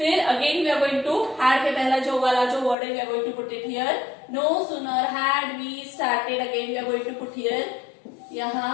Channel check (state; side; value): drops out; right; at 2.8 s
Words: again we are going to had के पहला जो वाला जो word है, we are going to put it here. No sooner had we started, again we are going to put here.